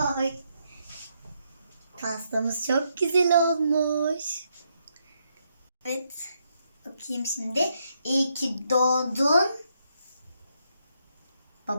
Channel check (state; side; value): inverted; both; correlation -0.77